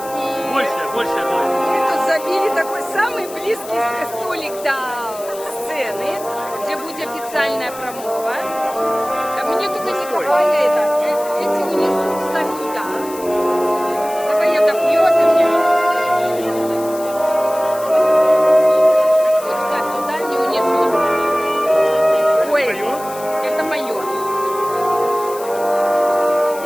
И Большая половинка. мы тут забили такой самый близкий столик до сцены, где будет официальная промова. Мне только не хватает эти унесут, ставь туда. Давай я допью, а ты мне. Вот ставь туда, не унесут. Ой,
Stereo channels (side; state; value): left; noise; hiss, 16 dB below the sound